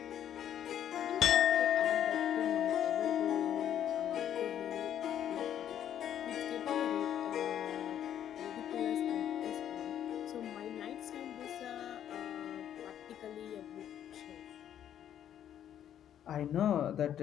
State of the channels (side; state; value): right; quieter; 10.2 dB